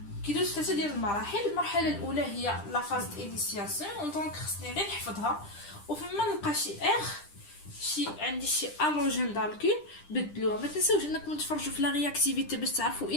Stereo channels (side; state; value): right; late; 10 ms